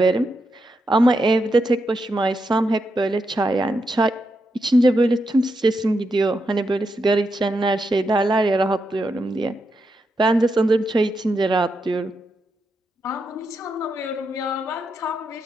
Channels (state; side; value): normal; both; correlation 0.84